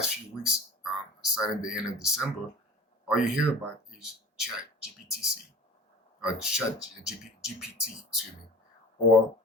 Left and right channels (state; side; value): normal; both; correlation 0.41